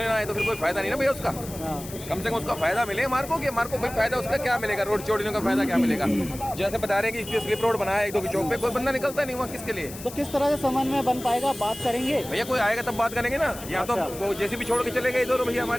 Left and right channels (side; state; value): left; noise; hiss, 14 dB below the sound